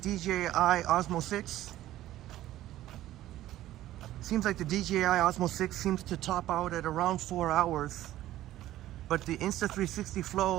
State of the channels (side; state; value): left; quieter; 14.3 dB